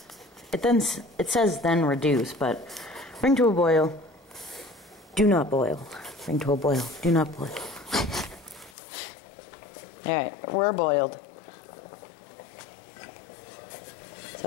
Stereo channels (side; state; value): right; drops out; at 8.7 s